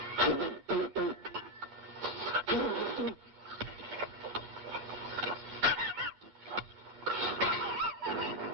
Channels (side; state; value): left; late; 10 ms